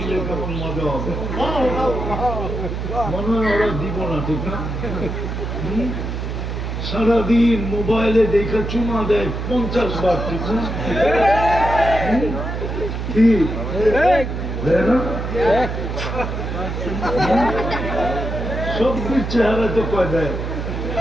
কেমন মজা হবে। মনে হয় ওরা দিব না, ঠিক না? সারাদিন মোবাইলে দেখে চুমা দেয় 50 বার, ঠিক না? ঠিক না? সব চেহারা তো কয় দেয়,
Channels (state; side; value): noise; right; hum, 4 dB below the sound